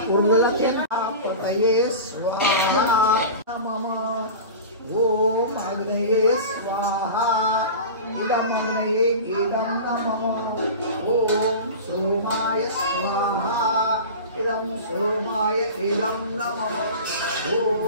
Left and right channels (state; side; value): inverted; both; correlation -0.32